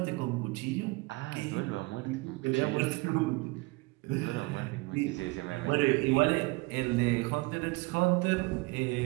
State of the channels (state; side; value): quieter; left; 24.4 dB